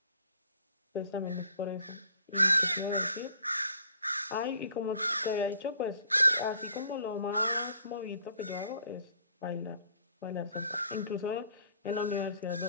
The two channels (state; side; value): inverted; both; correlation -0.58